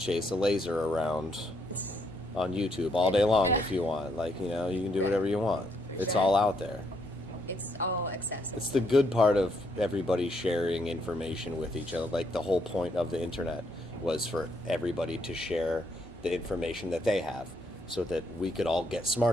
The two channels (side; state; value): both; normal; correlation 0.73